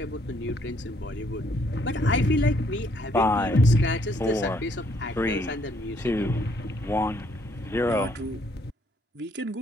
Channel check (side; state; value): both; normal; correlation 0.68